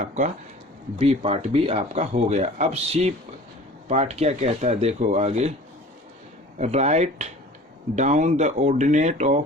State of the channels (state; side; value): normal; both; correlation 0.44